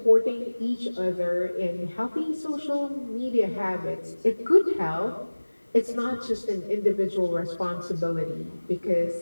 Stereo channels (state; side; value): inverted; both; correlation -1.00